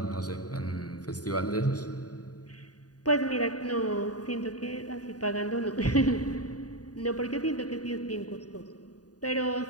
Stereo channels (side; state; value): right; late; 0.68 ms